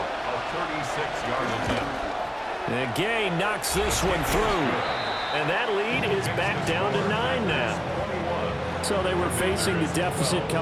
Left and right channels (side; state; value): both; identical; correlation 1.00